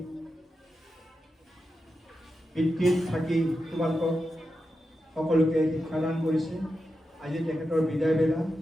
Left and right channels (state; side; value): normal; both; correlation 0.89